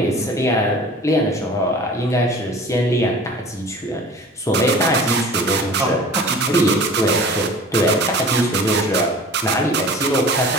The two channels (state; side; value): normal; both; correlation 0.42